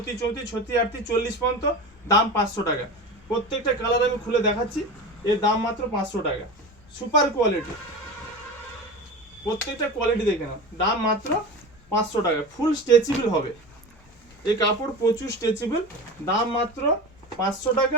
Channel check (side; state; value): both; normal; correlation 0.29